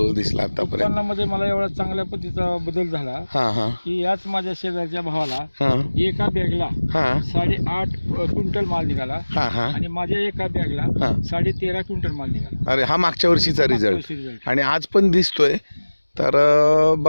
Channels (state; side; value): inverted; both; correlation -1.00